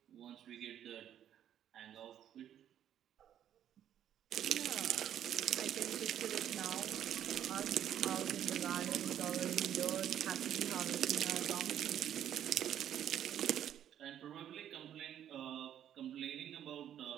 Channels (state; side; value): quieter; left; 10.4 dB